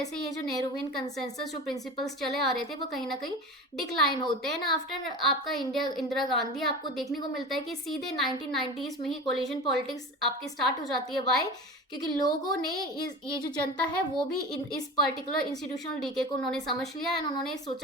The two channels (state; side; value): normal; both; correlation 0.32